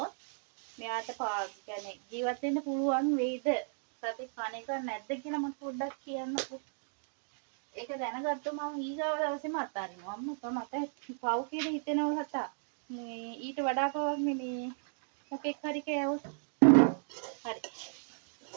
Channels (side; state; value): left; silent; digital silence